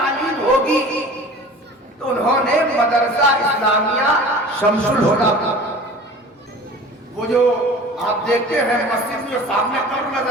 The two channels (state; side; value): normal; both; correlation 0.41